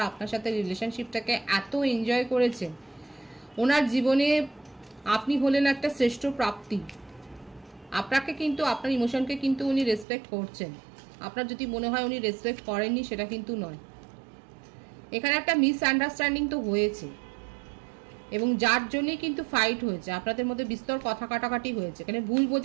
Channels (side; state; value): left; drops out; at 10.1 s